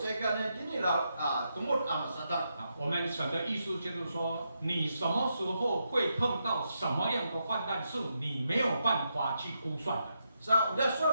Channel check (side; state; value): both; inverted; correlation -0.83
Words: 我们神的意思就是说，你什么时候会碰到什么样的患难，是你没有办法去估算的。udah